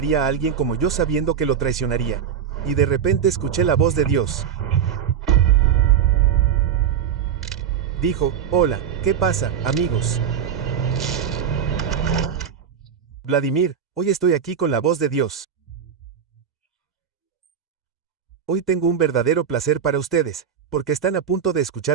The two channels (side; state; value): left; quieter; 8.0 dB